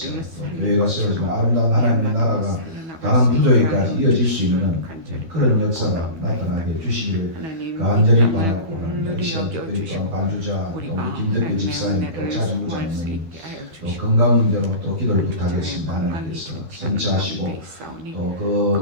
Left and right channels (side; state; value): left; late; 12 ms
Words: 또 교회가 세워지고 아름다운 하나님의 나라가 다른 부족에까지 이어질 수 있는 그런 역사가 나타나게 해주시기를 간절히 바라고 합니다. 이 시간 특별히 또한 반주자 또 우리 김덕배 집사님 또 차중구 장로님 또 건강 문제로 또 기도를 부탁했습니다. 하나님께서 선처하시고 또